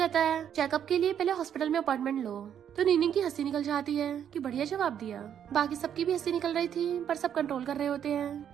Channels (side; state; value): left; quieter; 9.1 dB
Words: है, चेकअप के लिए पहले हॉस्पिटल में अपॉइंटमेंट लो। तो नीनिंग की हंसी निकल जाती है कि बढ़िया जवाब दिया। बाकी सबकी भी हंसी निकल रही थी पर सब कंट्रोल कर रहे होते